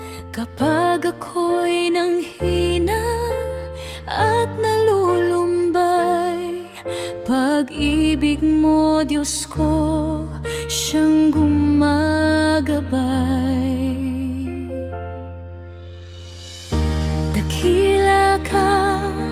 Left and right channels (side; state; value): both; identical; correlation 1.00